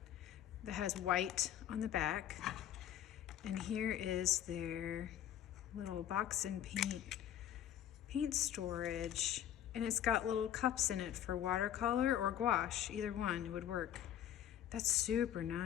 that has white on the back. And here is their little BoxNPaint paint storage. And it's got little cups in it for watercolor or gouache, either one would work. That's super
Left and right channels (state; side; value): quieter; right; 10.8 dB